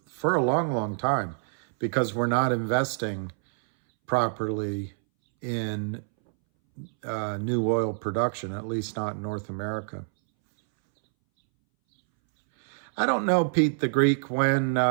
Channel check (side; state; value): left; silent; 60 dB below the other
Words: a long, long time, because we're not investing properly in new oil production, at least not in North America. I don't know, Pete the Greek, when